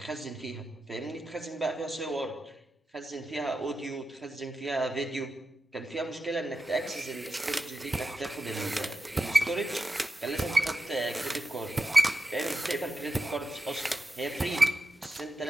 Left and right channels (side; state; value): both; normal; correlation 0.91